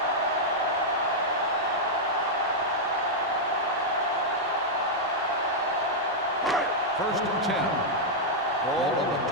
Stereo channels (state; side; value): normal; both; correlation -0.05